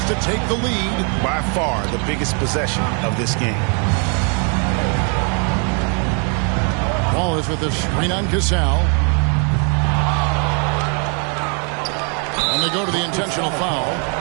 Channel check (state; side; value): quieter; left; 38.5 dB